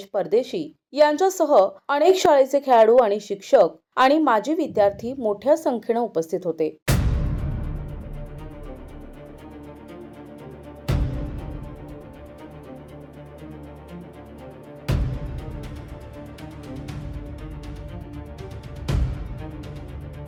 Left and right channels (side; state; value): both; identical; correlation 1.00